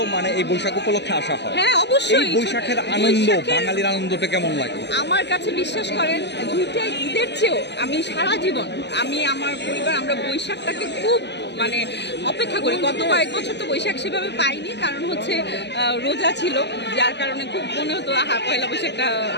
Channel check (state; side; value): late; right; 0.50 ms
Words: মানে এই বৈশাখ উপলক্ষে আসা হয়। হ্যাঁ অবশ্যই। এই বৈশাখের আনন্দ, বাঙালির আনন্দটা কেমন লাগে? আমার কাছে বিশ্বাস করেন, দুইটাই ঈদের চেয়েও আমি সারা জীবন আমি আমার পরিবার আমরা বৈশাখটাকে খুব মানে অপেক্ষা করি। গত কয়েক বছর তো বৈশাখ সেভাবে পাইনি, কারণ হচ্ছে রোজা ছিল, যার কারণে খুব মনে হতো পয়লা বৈশাখটা